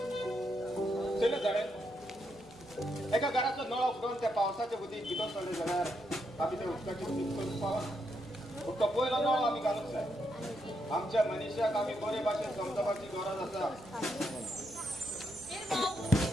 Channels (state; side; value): normal; both; correlation 0.80